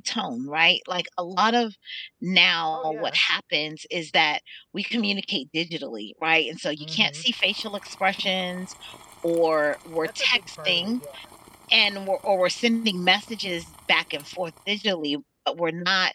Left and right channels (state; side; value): identical; both; correlation 1.00